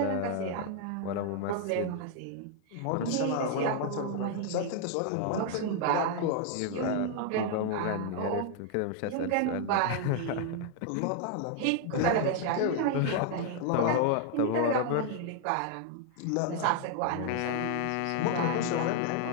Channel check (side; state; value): both; different; correlation 0.00